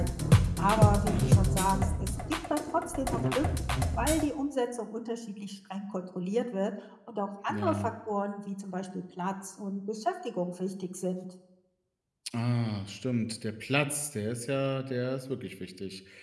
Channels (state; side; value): identical; both; correlation 1.00